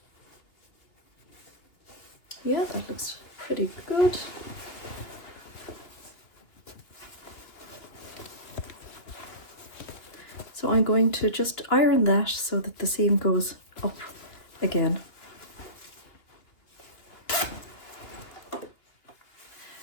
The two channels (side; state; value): right; late; 2.8 ms